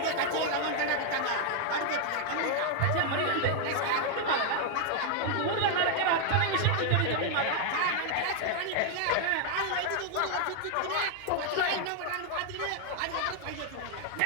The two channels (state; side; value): different; both; correlation 0.00